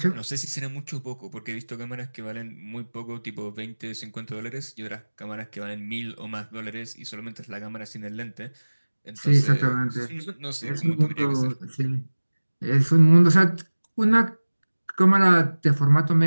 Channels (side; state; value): both; inverted; correlation -1.00